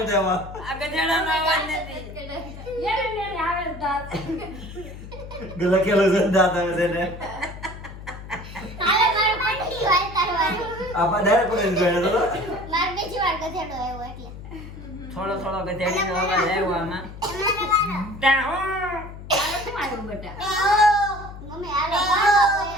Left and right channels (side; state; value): left; noise; hum, 13 dB below the sound